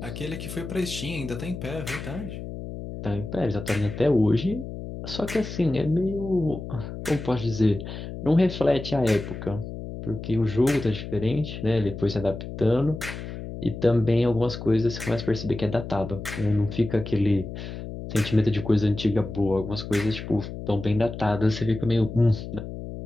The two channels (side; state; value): left; noise; hum, 9 dB below the sound